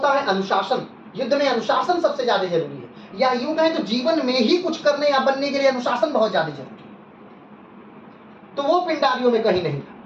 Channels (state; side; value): identical; both; correlation 1.00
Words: है अनुशासन। युद्ध में अनुशासन सबसे ज्यादा जरूरी है, या यूं कहें तो जीवन में ही कुछ करने या बनने के लिए अनुशासन बहुत ज्यादा जरूरी है। तो वो पिंडारियों में कहीं नहीं था।